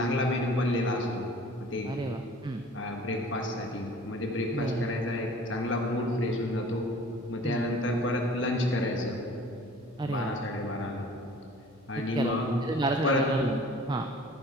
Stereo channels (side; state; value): left; noise; hum, 28 dB below the sound